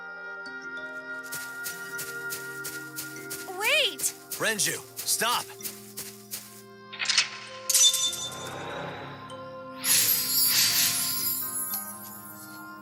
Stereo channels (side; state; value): both; identical; correlation 1.00